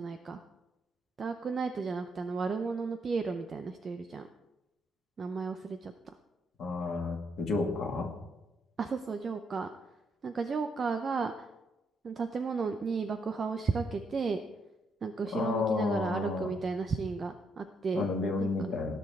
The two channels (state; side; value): normal; both; correlation 0.76